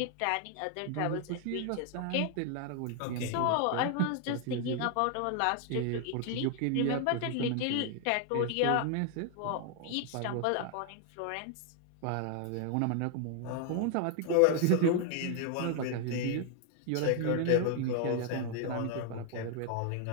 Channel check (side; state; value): both; different; correlation 0.00